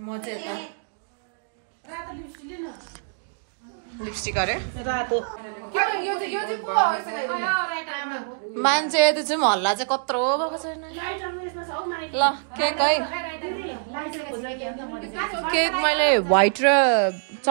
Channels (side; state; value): left; silent; digital silence